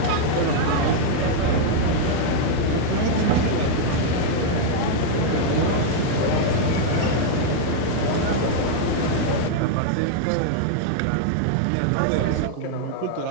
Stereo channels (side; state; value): both; different; correlation -0.01